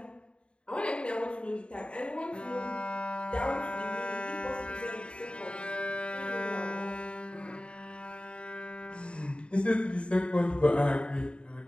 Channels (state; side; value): late; right; 0.056 ms